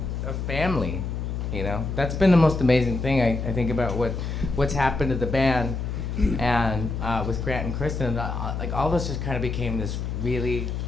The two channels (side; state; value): left; noise; hum, 3 dB below the sound